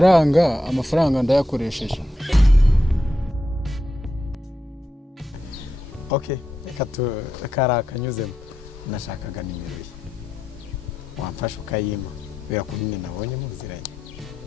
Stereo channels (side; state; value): both; normal; correlation 0.86